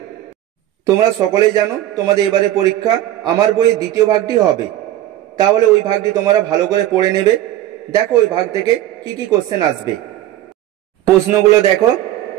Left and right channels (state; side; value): quieter; left; 13.5 dB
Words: তোমরা সকলেই জানো তোমাদের এবারে পরীক্ষা আমার বইয়ের দ্বিতীয় ভাগটি হবে, তাহলে ওই ভাগটি তোমরা ভালো করে পড়ে নেবে। দেখো ওই ভাগ থেকে কি কি কোশ্চেন আসবে। প্রশ্নগুলো দেখো।